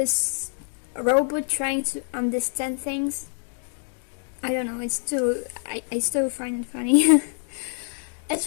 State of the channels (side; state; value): right; silent; 58 dB below the other